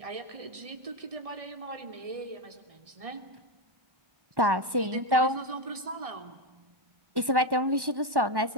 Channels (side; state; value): left; late; 1.1 ms